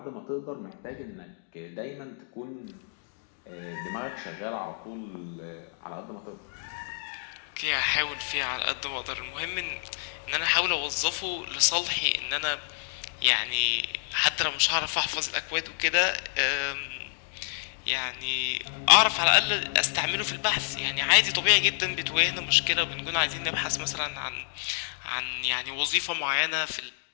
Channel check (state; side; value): silent; right; digital silence